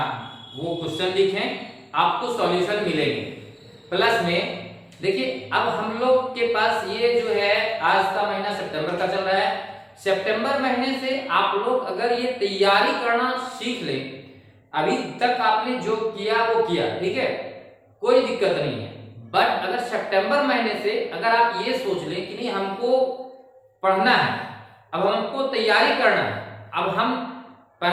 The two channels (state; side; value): identical; both; correlation 1.00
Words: वो क्वेश्चन लिखें, आपको सॉल्यूशन मिलेंगे। प्लस में देखिए, अब हम लोग के पास ये जो है, आज का महीना सितंबर का चल रहा है। सितंबर महीने से आप लोग अगर ये तैयारी करना सीख लें, अभी तक आपने जो किया वो किया, ठीक है, कोई दिक्कत नहीं है। बट अगर सितंबर महीने से अगर आप ये सोच लें कि नहीं, हमको पढ़ना है, अब हमको तैयारी करना है, अब हम